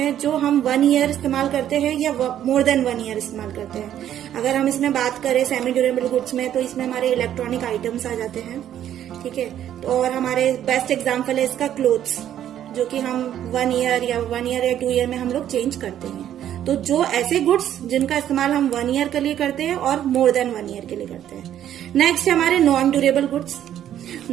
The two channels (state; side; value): quieter; left; 10.9 dB